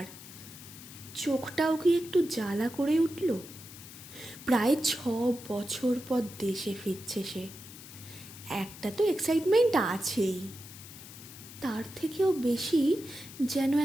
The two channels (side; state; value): left; noise; hiss, 16 dB below the sound